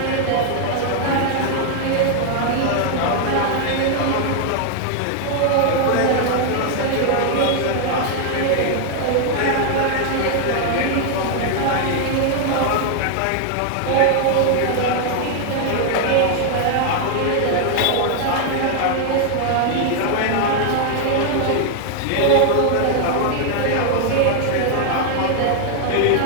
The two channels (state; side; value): different; both; correlation 0.00